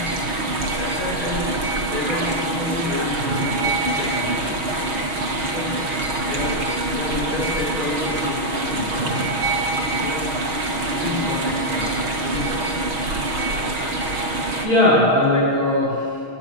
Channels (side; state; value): left; late; 6.4 ms